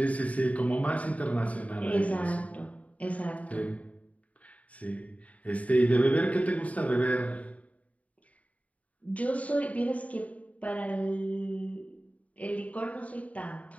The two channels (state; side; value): late; right; 0.068 ms